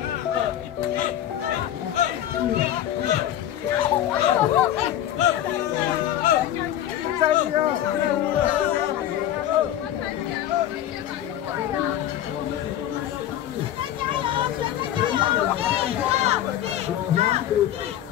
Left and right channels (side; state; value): right; quieter; 11.7 dB